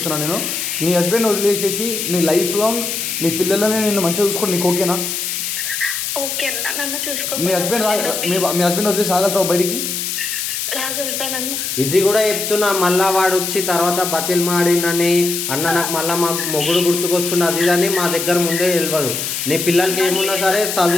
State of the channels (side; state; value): left; noise; hiss, 3 dB below the sound